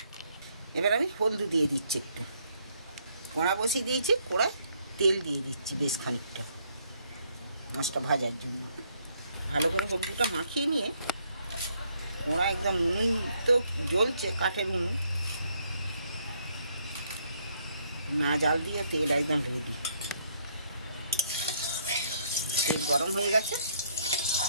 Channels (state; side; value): inverted; both; correlation -0.69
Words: এবার আমি হলদু দিয়ে দিচ্ছি একটু। কড়া বসিয়ে দিয়েছি, কড়ায় তেল দিয়ে দিচ্ছি বেশ খানিকটা মাছটা ভাজার জন্য। ভালো করে হলদুটা মাখিয়ে নিয়ে কড়া একদম উনুন তো জ্বলছে, কাঠের উনুন, না জাল দিয়ে তেল একদম রেডি। তেল গরম হয়ে গেছে।